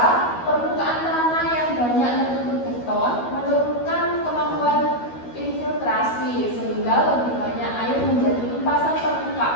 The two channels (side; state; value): right; late; 12 ms